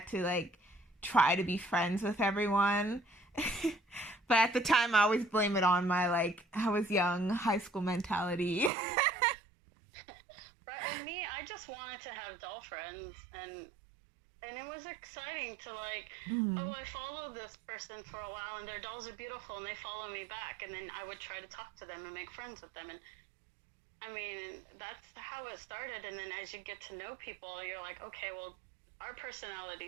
to like try to be friends with everyone. But at the time I always blame it on my like, I was young, high school mentality. Right, and me, I just wanted to have doll friends, and it was exciting to like, oh, I followed this person for a while and their dolls are beautiful and they follow me back, and then I would try to talk to them and make friends with them. And I mean, that's how it started. And then as you get to know people, you're like, okay, well, our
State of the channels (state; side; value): drops out; left; at 8.7 s